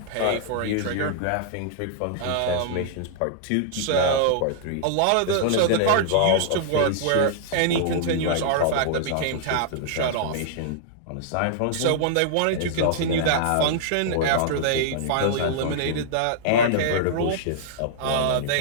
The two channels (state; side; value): different; both; correlation -0.01